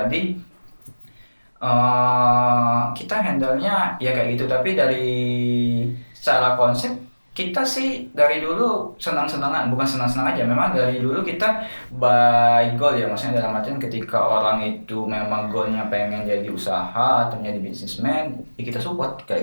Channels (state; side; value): inverted; both; correlation -1.00